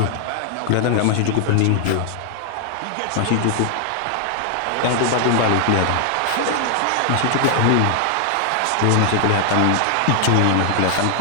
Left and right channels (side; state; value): both; different; correlation 0.00